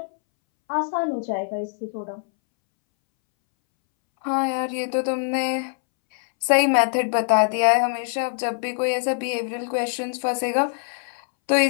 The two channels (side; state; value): right; silent; 63 dB below the other